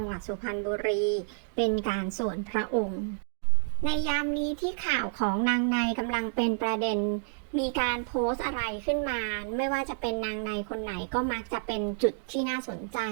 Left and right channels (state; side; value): silent; left; digital silence